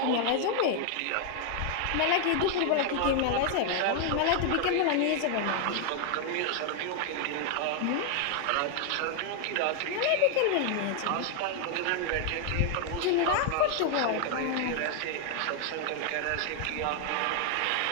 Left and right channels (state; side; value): different; both; correlation 0.00